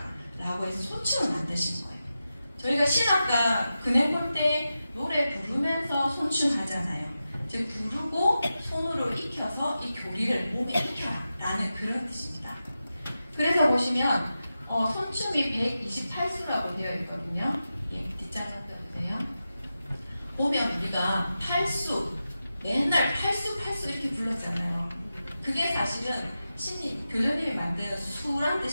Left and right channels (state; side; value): inverted; both; correlation -0.92